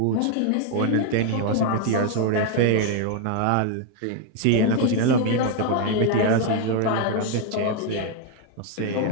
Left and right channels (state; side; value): different; both; correlation 0.01